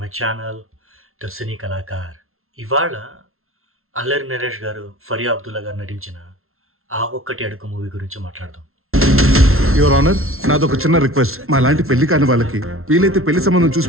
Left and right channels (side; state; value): left; late; 0.62 ms